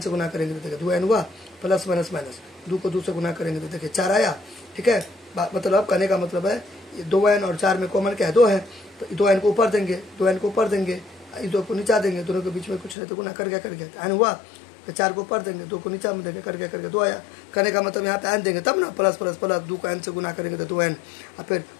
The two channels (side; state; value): right; drops out; at 13.0 s